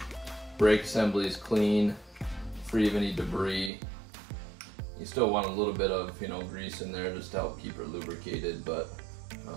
brake assembly is clean, free of any debris. You still want a little bit of, you know, grease in there just to help keep it lubricated, but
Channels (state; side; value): drops out; left; at 3.7 s